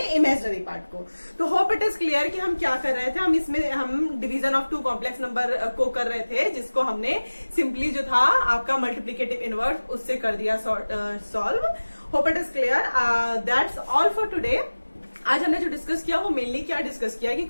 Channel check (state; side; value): inverted; both; correlation -1.00